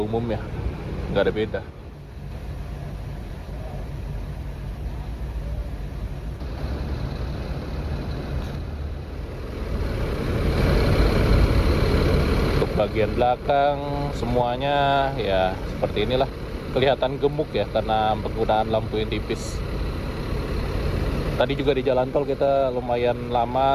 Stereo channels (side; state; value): both; identical; correlation 1.00